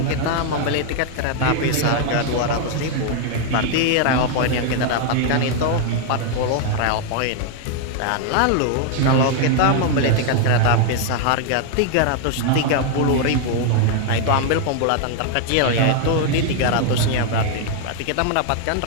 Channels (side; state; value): both; different; correlation 0.00